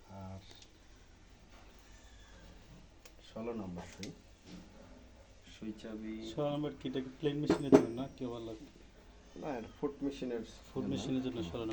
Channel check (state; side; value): identical; both; correlation 1.00